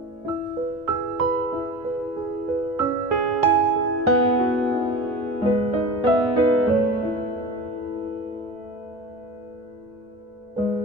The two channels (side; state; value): both; normal; correlation 0.33